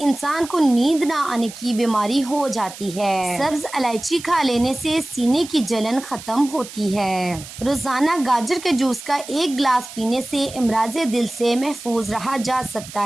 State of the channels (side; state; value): right; noise; hiss, 14 dB below the sound